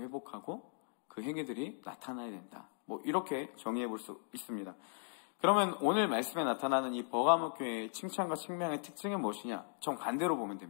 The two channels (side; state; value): right; silent; 53 dB below the other